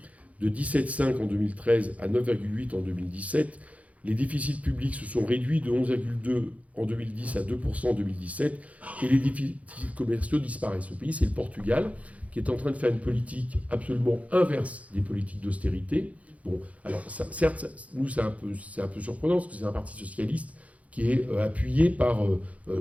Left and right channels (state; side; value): late; left; 0.067 ms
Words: de 17,5 en 2013 à 9,8 en 2017. Les déficits publics se sont réduits de 11,2 en 2010 à 2% en 2017 et les déficits commerciaux disparaissent. Ce pays, c'est le Portugal, qui est en train de faire une politique absolument inverse des politiques d'austérité. Bon, alors certes, nous, c'est un peu surprenant parce que c'est un parti socialiste qui est appuyé par...